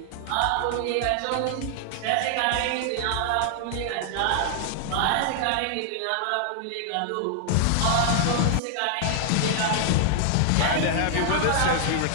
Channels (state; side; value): different; both; correlation 0.00